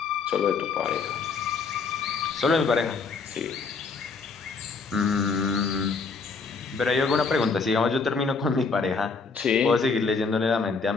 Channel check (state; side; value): quieter; right; 4.7 dB